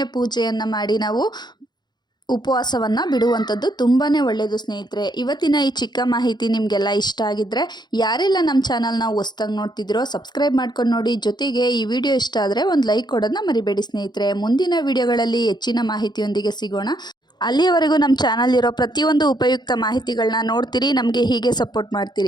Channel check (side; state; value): right; late; 0.21 ms